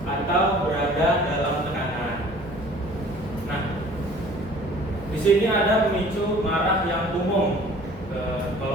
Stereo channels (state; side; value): normal; both; correlation 0.50